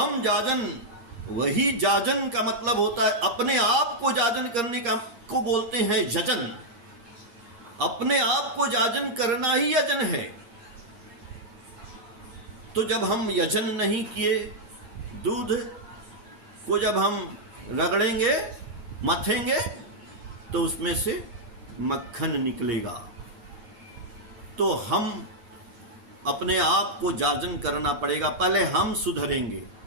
जाजन, वही जाजन का मतलब होता है अपने आप को जाजन करने का, को बोलते हैं यजन। अपने आप को जाजन करना ही यजन है। तो जब हम यजन नहीं किए, दूध को जब हम रगड़ेंगे, मथेंगे, तो उसमें से मक्खन निकलेगा। तो हम अपने आप को जाजन करना पड़ेगा। पहले हम सुधरेंगे,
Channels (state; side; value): late; left; 9.5 ms